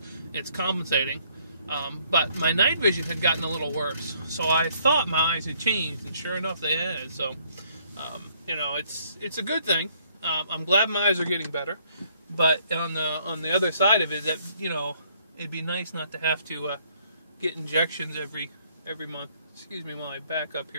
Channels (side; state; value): both; inverted; correlation -0.66